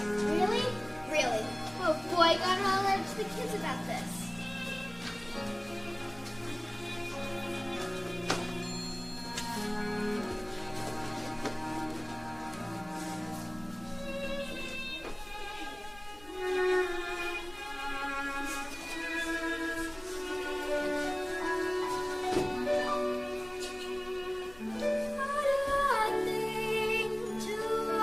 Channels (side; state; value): left; noise; hum, 23 dB below the sound